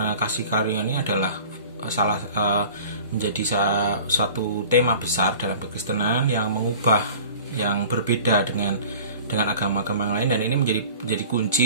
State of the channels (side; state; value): both; inverted; correlation -0.44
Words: kasih karunia ini adalah menjadi suatu tema besar dalam kekristenan yang mengubah, yang berbeda dengan agama-agama yang lain, dan ini menjadi